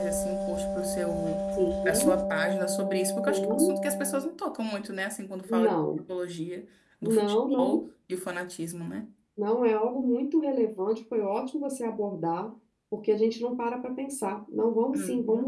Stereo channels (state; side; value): identical; both; correlation 1.00